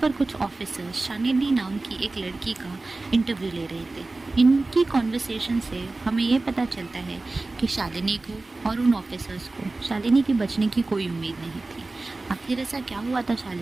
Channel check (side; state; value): left; quieter; 3.2 dB